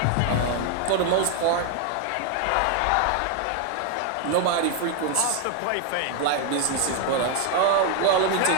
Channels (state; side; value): different; both; correlation 0.01